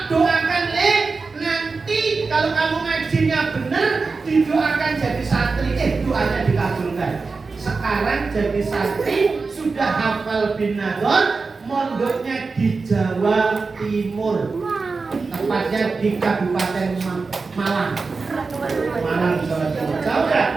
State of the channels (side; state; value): left; quieter; 4.3 dB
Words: doakan nanti kalau kamu ngajinya benar, didoakan jadi santri. Doanya dikabulkan. Sekarang jadi santri, sudah hafal bin Nador, mondoknya di Jawa Timur, tepatnya di Kabupaten Malang, Jawa Timur. Jauh kan?